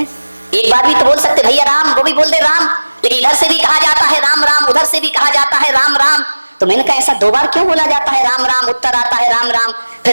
एक बार भी तो बोल सकते भैया राम, वो भी बोल दे राम, लेकिन इधर से भी कहा जाता है राम राम, उधर से भी कहा जाता है राम राम। तो मैंने कहा ऐसा 2 बार क्यों बोला जाता है राम राम, उत्तर आता है राम राम।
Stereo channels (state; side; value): inverted; both; correlation -1.00